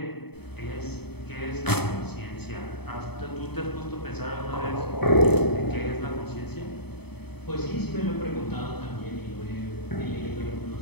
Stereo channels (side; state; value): right; late; 0.97 ms